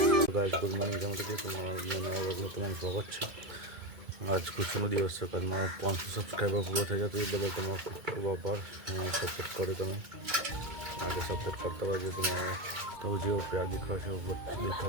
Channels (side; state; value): left; late; 2.1 ms